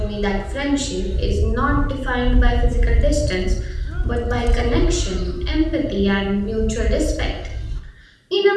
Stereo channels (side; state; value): both; identical; correlation 1.00